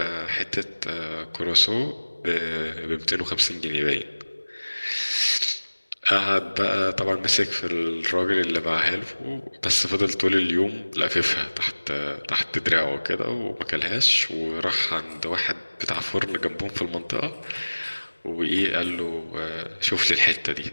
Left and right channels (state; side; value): inverted; both; correlation -1.00